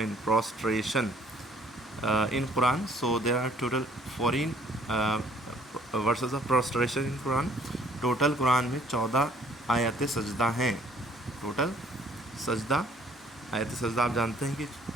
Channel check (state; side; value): normal; both; correlation 0.59